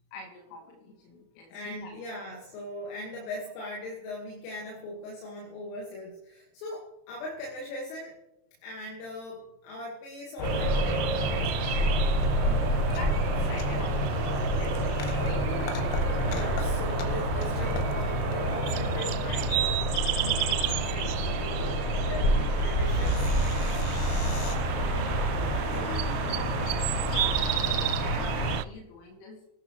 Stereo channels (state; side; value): late; right; 35 ms